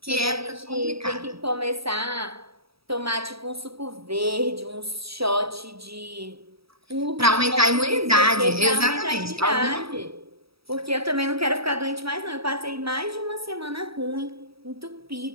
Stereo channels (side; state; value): left; late; 0.77 ms